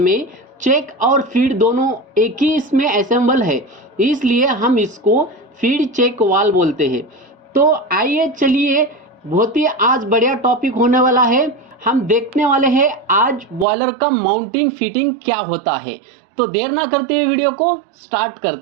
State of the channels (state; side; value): drops out; left; at 13.7 s